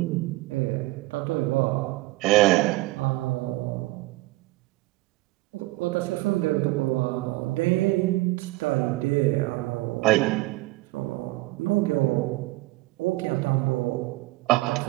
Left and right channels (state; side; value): quieter; left; 20.4 dB